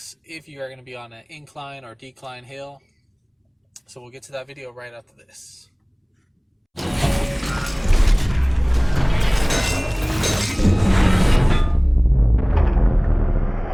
if you are going to be on an incline or decline hill. So we'll get to that video right after this.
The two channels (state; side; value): identical; both; correlation 1.00